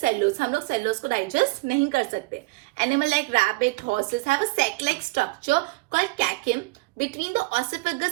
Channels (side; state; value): left; quieter; 24.7 dB